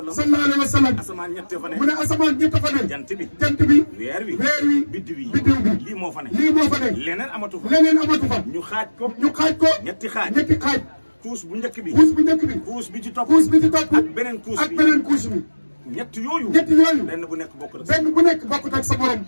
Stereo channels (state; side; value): inverted; both; correlation -1.00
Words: alayhi wa sallam. asamaan ñett fa ne. mu ne asamaan ñett fa ne. jant bi. jant bi. weer wi. weer wi. biddiw bi. biddiw bi. lii moo fa ne. lii moo fa ne. leneen amatu fa. leneen amatu fa. ñu xaaj ko. ñu xaaj ko. ñetti xaaj. ñetti xaaj. couche bu njëkk bi. couche bu njëkk bi. couche bi ci topp. couche bi ci topp. ak beneen couche bi. ak beneen couche bi. ñett yooyu benn bu nekk bokkut ak sa morom.